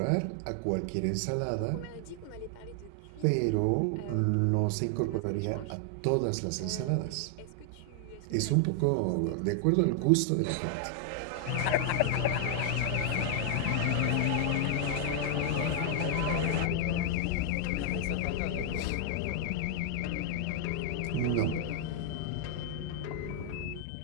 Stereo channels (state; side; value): different; both; correlation 0.00